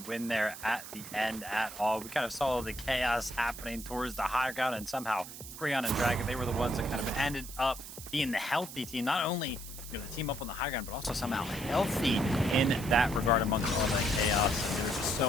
there at the end at all. We kind of saw the chaos happening towards the high ground, and somehow Creon and Dragon, they were the ones that kind of ended up being the healthy team. Not only, you know, the team up on the high ground, but also somehow healthy in that regard amongst all that chaos. There was just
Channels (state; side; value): noise; right; hiss, 12 dB below the sound